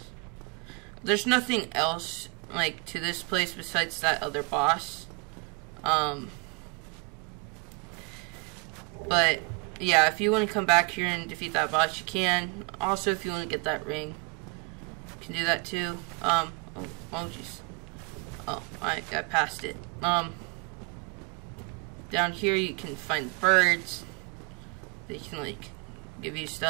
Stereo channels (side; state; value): left; quieter; 31.1 dB